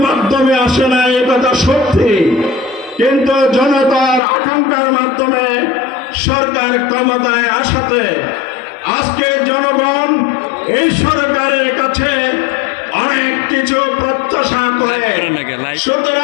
মাধ্যমে আসে না, এ কথা সত্যি, কিন্তু জনতার আকাঙ্ক্ষার মাধ্যমে সরকার ক্ষমতায় আসাতে আজকে জনগণ এই সরকারের কাছে অনেক কিছু প্রত্যাশা করে।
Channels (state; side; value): drops out; right; at 4.2 s